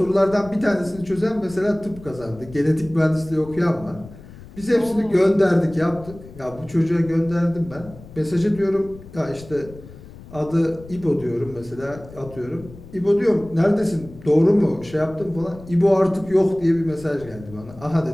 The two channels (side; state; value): left; noise; rumble, 18 dB below the sound